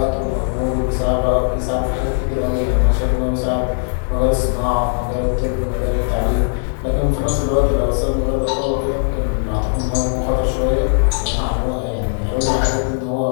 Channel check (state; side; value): silent; right; 67 dB below the other